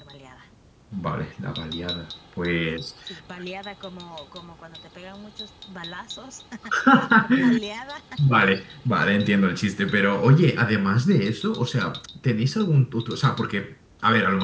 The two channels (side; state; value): both; identical; correlation 1.00